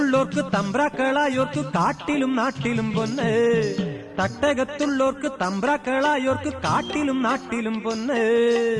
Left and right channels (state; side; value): identical; both; correlation 1.00